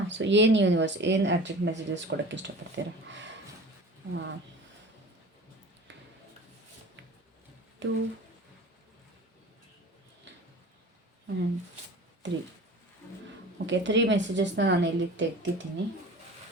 ಸೊ ಏನು ಯೂನಿವರ್ಸ್ ಏನು ಅರ್ಜೆಂಟ್ ಮೆಸೇಜಸ್ ಕೊಡೋಕ್ಕೆ ಇಷ್ಟಪಡ್ತೀರಾ? 2 ಆ್ಯಂಡ್ 3. ಓಕೆ, 3 ಮೆಸೇಜಸ್ನ ನಾನು ಇಲ್ಲಿ ತೆಗ್ದಿದ್ದೀನಿ.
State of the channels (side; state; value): both; normal; correlation 0.39